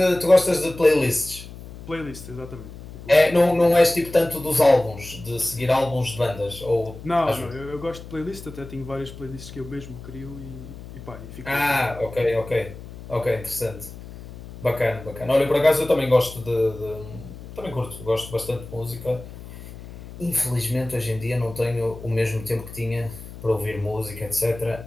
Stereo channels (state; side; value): noise; left; hum, 14 dB below the sound